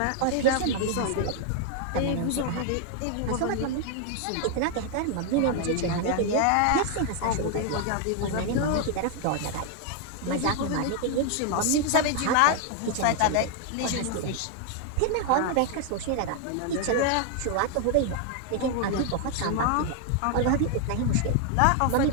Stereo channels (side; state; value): both; different; correlation 0.00